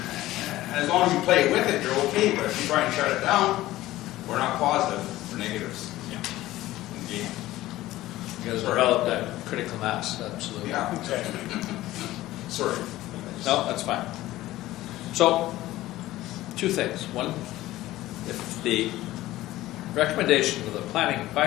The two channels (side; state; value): right; quieter; 16.2 dB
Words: As long as you play with it, you're okay. But if you try and shut it down, we're not positive. We're negatives. Yeah. Okay. You guys developed that critical mass, absolutely. Yeah. Exactly. Sorry. No, that's fine. So, two things. One, if the recommendation of the Planning